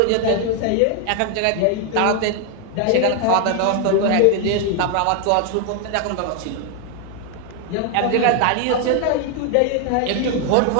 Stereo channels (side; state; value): both; different; correlation 0.01